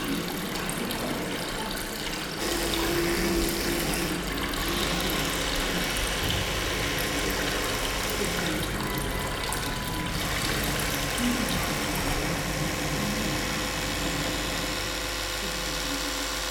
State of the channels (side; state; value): both; identical; correlation 1.00